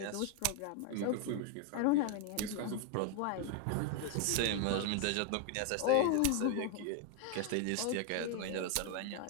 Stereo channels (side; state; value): both; different; correlation 0.01